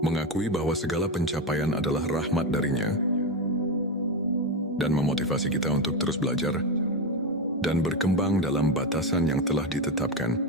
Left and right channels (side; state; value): both; normal; correlation 0.12